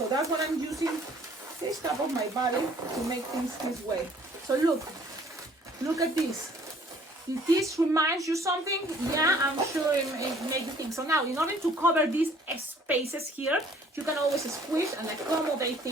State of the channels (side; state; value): both; normal; correlation 0.57